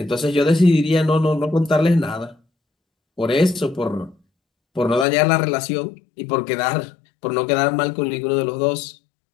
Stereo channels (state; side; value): drops out; right; at 5.1 s